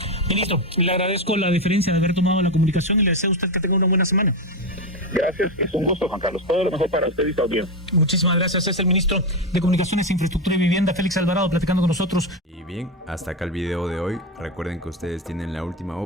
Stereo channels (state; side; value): normal; both; correlation 0.11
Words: Ministro, le agradezco la deferencia de haber tomado la comunicación, y le deseo a usted que tenga una buena semana. Gracias, es un gusto, Juan Carlos. Todo lo mejor para usted y su audiencia. Muchísimas gracias. Es el ministro de Comunicaciones, Infraestructura y Vivienda, Félix Alvarado, platicando con nosotros. Y bien, hasta acá el video de hoy. Recuerden que ustedes tienen la última